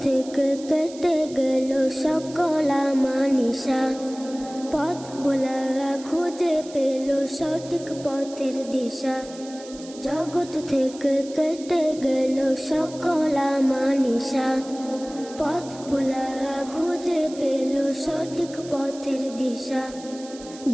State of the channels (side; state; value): right; noise; hiss, 18 dB below the sound